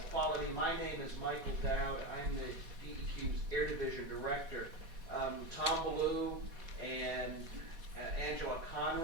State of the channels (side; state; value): left; late; 4.1 ms